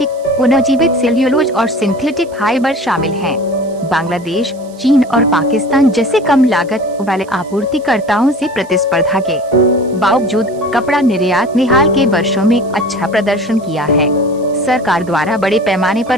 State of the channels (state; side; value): noise; right; hiss, 26 dB below the sound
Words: पुनर्जीवित सेल्यूलोज और सिंथेटिक फाइबर शामिल हैं। बांग्लादेश, चीन और पाकिस्तान जैसे कम लागत वाले आपूर्तिकर्ताओं से प्रतिस्पर्धा के बावजूद कपड़ा निर्यात ने हाल के वर्षों में अच्छा प्रदर्शन किया है। सरकार द्वारा बड़े पैमाने